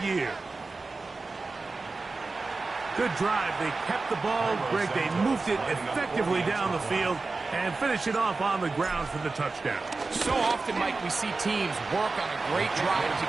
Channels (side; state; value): left; quieter; 3.8 dB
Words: year. Good drive. They kept the ball. Greg, they moved it effectively down the field and finish it off on the ground for the touchdown. So often, Mike, we see teams work on a great drive to